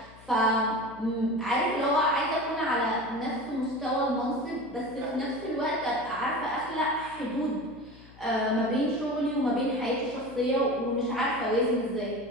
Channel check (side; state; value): left; noise; hum, 22 dB below the sound